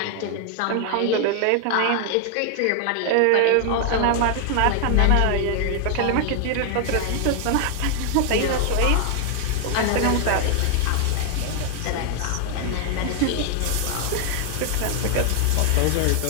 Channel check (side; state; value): both; different; correlation 0.00